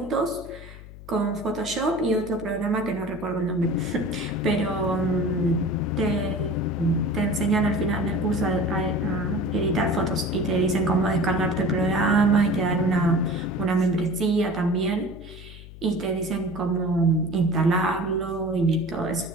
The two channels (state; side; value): noise; left; hum, 16 dB below the sound